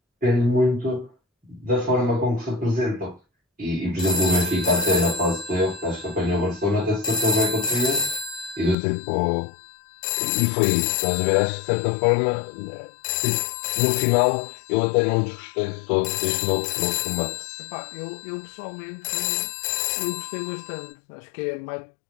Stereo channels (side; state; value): right; drops out; at 8.8 s